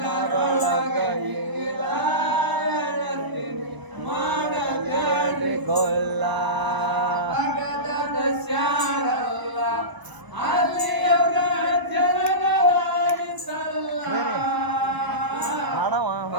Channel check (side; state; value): left; late; 1.0 ms